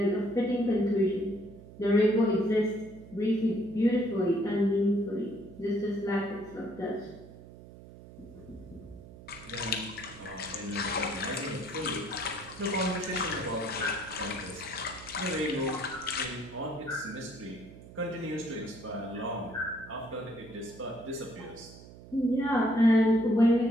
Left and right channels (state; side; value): noise; right; hum, 18 dB below the sound